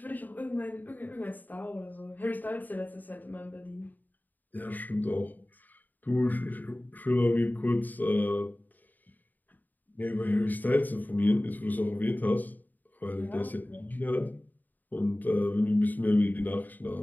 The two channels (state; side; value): late; right; 0.086 ms